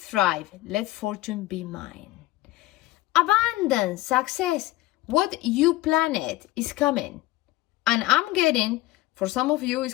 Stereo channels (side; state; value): right; quieter; 17.6 dB